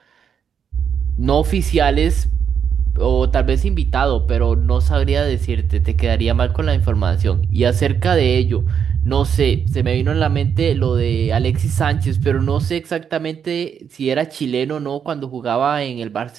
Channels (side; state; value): left; quieter; 7.6 dB